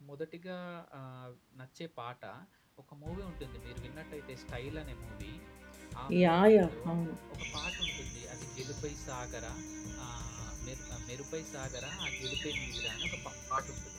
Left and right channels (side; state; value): both; identical; correlation 1.00